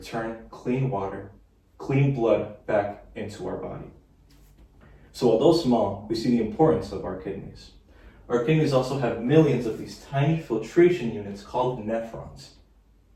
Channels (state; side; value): identical; both; correlation 1.00